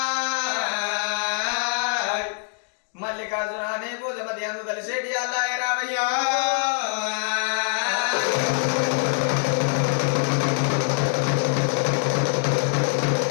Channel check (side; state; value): right; silent; digital silence